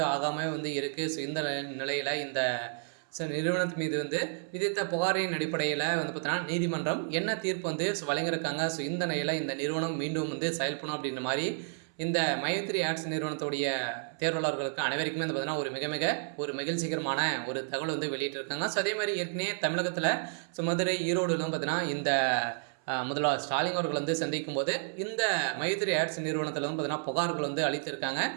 ஆகாமல் இருக்குது. ஸோ இந்த நிலையில் இந்த நிறுவனத்து மீது விதித்த புகாரின் அடிப்படையில் பார்த்தீங்கன்னா நீதிமன்றம் என்ன தீர்ப்பு வழங்கியிருக்காங்க. ஸோ இந்த நிலையில் இந்த நிறுவனம் மீண்டும் செயல்படும் அப்படின்ற மாதிரி இந்த மைவித்ரி ஆட்ஸ் நிறுவனத்துடைய தேர்வாளர்களுக்கு அனைவருக்குமே பார்த்தீங்கன்னா ஒரு மகிழ்ச்சிகரமான ஒரு தகவல் வெளியிட்டிருக்காங்க. ஸோ அதே மாதிரி ஏற்கனவே தமிழகத்தில் மதுரை, ஈரோடுலாம் பார்த்தீங்கன்னா இந்த முதல்வர் ஸ்டாலின் அவர்கள் சந்திக்கும் போது இந்த மைவித்ரி ஆட்ஸ் நிறுவனத்தில் பார்த்தீங்கன்னா புகார்கள் அளித்திருக்காங்க.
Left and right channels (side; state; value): left; silent; 57 dB below the other